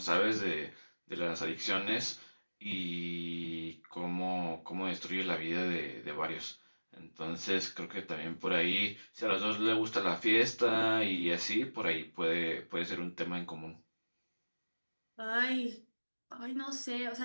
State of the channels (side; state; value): both; inverted; correlation -1.00